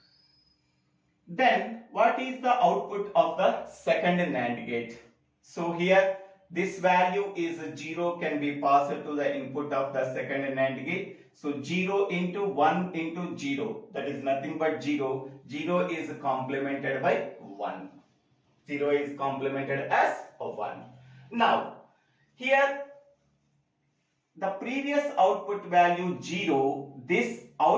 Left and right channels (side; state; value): both; identical; correlation 1.00